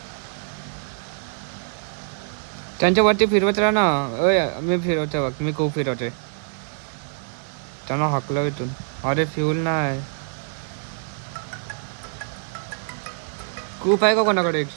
त्यांच्या वरती फिरवत राहा ना. मी फिरवतोय बघ. मी खूप फिरवतोय. त्यांना हाकलं इथून. अरे फ्यूल नाही. खूप आहे का कोणाकडे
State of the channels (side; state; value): left; silent; digital silence